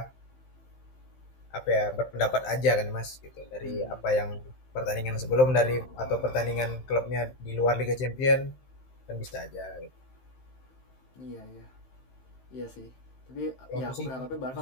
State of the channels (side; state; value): right; late; 15 ms